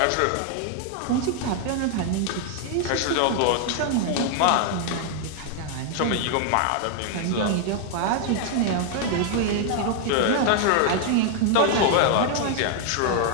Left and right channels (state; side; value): different; both; correlation 0.00